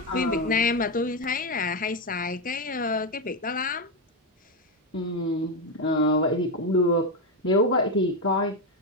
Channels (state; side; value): normal; both; correlation 0.07